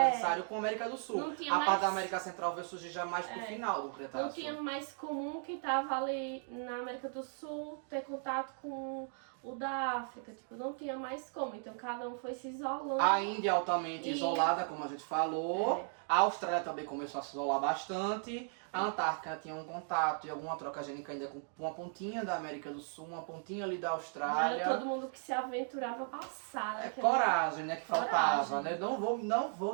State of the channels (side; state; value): left; silent; 53 dB below the other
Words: com a América do Sul. Não tinha A mais- parte da América Central veio surgir já mais pro final do Cretáceo. Não tinha mais comum quem tava ali na América do Sul ter contato com o da África, tipo, não tinha mais como, então cada um foi se isolando. A Índia é altamente E- isolada, como a gente falou. A Austrália também começou a se isolar bastante. A Antártica tinha um contato e alguma troca gênica ainda com uma pontinha da América do Sul, uma pontinha ali da Não Austrália. era todo mundo que se aventurava a passar, né? Coragem, né, que faltava, Coragem. né? Não